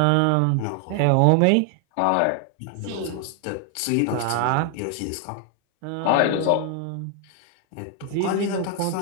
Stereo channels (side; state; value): both; different; correlation 0.00